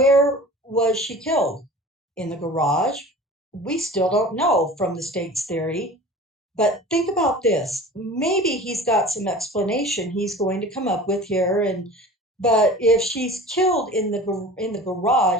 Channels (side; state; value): both; normal; correlation 0.39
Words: was she killed? In the garage? We still don't know from the state's theory. But think about this. Maybe he's got some explanation he's going to come up with here. But if she's killed in the